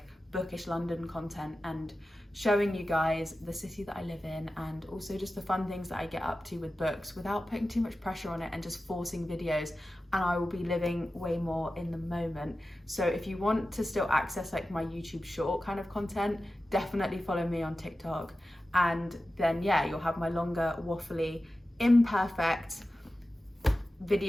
bookish London content and showing you guys the city that I live in, and also just the fun things that I get up to with books without putting too much pressure on it and just forcing videos. And I will be living way more in the moment. So if you want to still access my YouTube short kind of content, definitely follow me on TikTok. And then yeah, you'll have my longer, waffly, imperfect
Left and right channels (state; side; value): normal; both; correlation 0.94